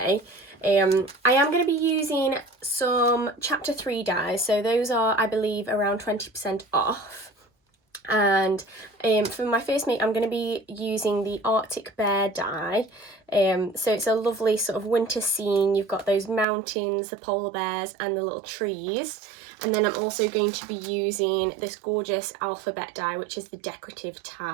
I am going to be using some chapter 3 dies, so those are, I believe, around 20% off. And for my first make I'm going to be using the Arctic Bear die. So it's a lovely sort of winter scene. You've got those mountains, the polar bears and the little trees. And then I'm also going to be using this gorgeous alphabet die, which is the decorative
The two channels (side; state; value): left; drops out; at 16.4 s